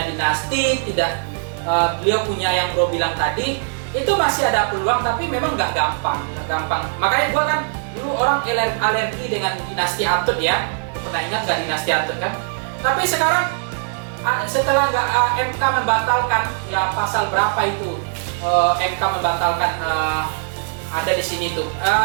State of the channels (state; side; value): silent; left; digital silence